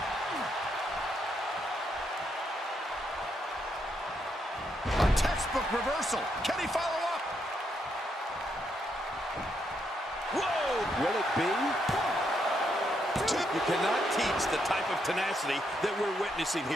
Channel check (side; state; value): both; normal; correlation 0.78